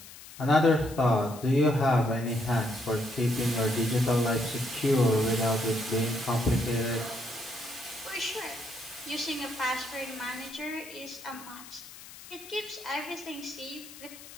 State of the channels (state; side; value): noise; left; hiss, 17 dB below the sound